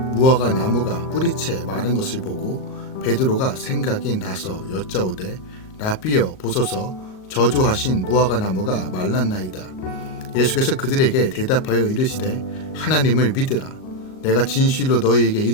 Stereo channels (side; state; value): right; late; 38 ms